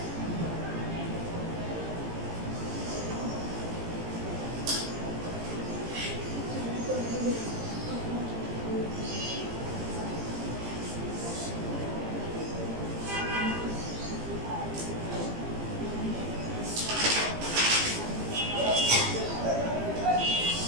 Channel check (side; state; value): left; late; 18 ms